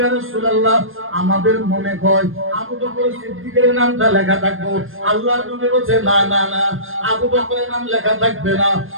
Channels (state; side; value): late; left; 0.60 ms